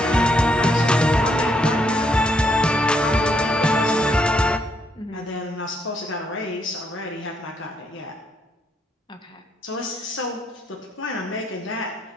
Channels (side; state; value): both; normal; correlation 0.74